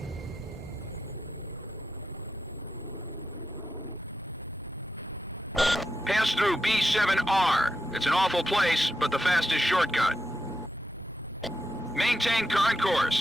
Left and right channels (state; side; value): normal; both; correlation 0.85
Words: Pass through B7R. It's an awful place, but the fastest shortcut. Maintain current